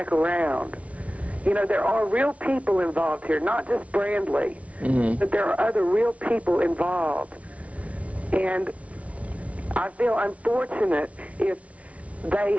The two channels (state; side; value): late; left; 0.065 ms